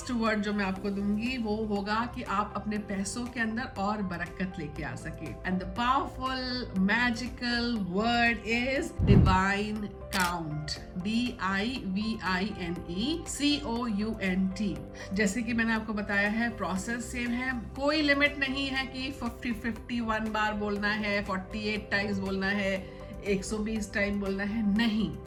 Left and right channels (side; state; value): both; identical; correlation 1.00